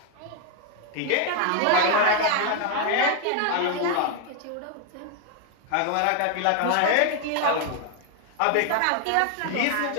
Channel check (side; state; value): both; different; correlation 0.01